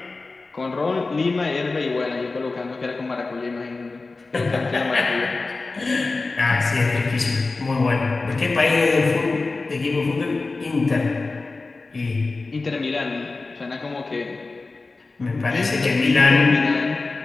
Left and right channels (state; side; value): quieter; right; 3.6 dB